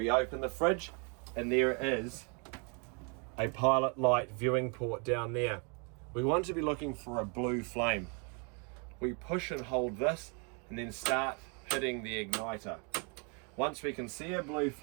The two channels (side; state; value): left; quieter; 35.9 dB